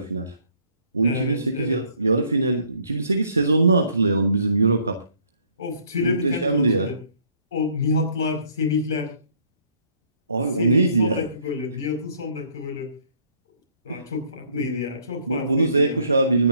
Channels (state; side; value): inverted; both; correlation -0.64